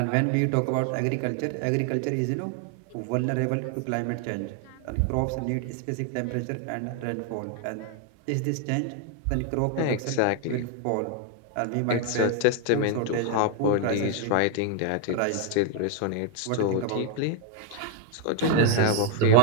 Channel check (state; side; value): different; both; correlation 0.01